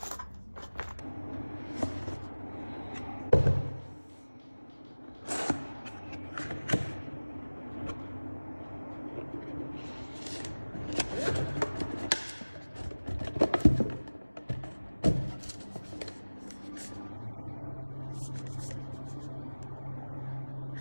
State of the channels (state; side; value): inverted; both; correlation -1.00